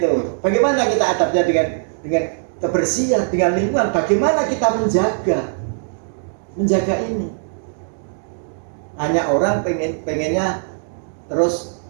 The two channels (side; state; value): left; silent; digital silence